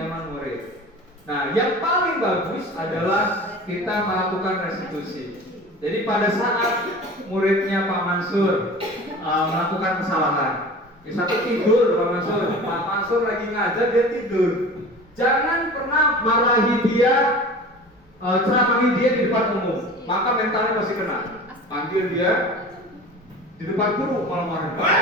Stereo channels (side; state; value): both; normal; correlation 0.38